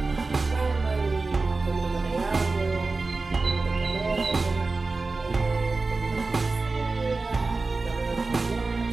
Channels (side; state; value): left; quieter; 3.7 dB